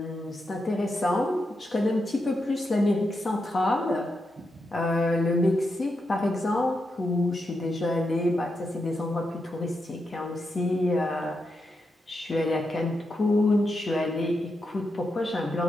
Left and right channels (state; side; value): normal; both; correlation 0.85